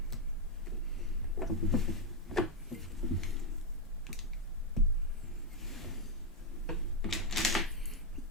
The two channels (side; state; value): both; normal; correlation 0.04